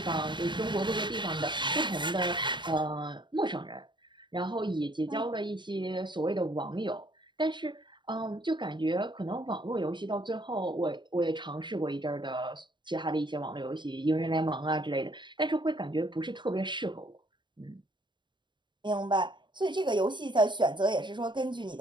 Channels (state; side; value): late; left; 0.23 ms